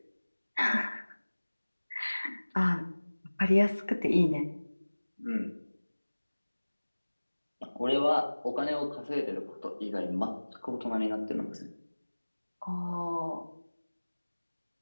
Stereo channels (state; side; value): inverted; both; correlation -1.00